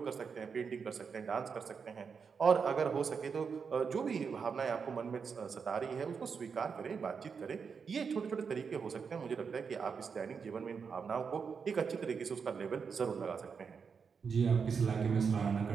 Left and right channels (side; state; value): left; quieter; 5.9 dB